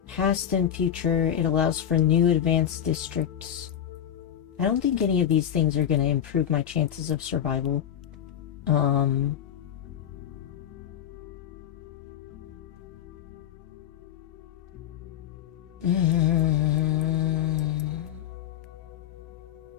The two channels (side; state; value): right; quieter; 10.0 dB